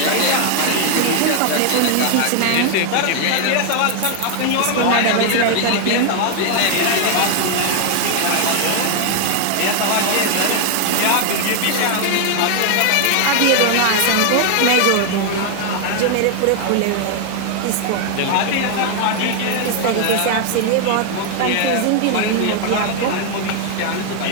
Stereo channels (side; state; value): both; different; correlation 0.00